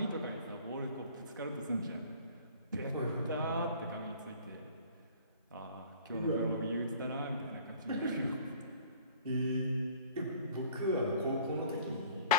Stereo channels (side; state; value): both; inverted; correlation -0.51